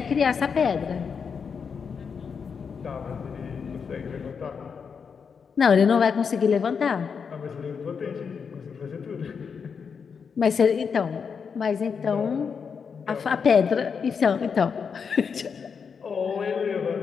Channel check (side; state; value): right; quieter; 6.1 dB